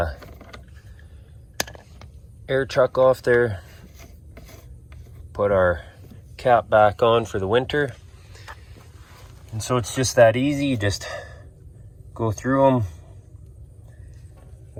chuck off there. Put our cap back on for the winter. And so it's just that easy. You just go through them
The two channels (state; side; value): identical; both; correlation 1.00